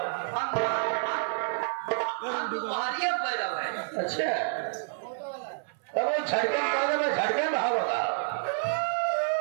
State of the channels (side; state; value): left; silent; 59 dB below the other